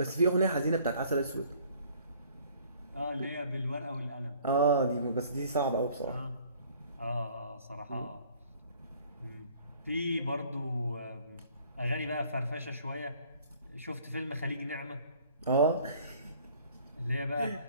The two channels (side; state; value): both; inverted; correlation -0.56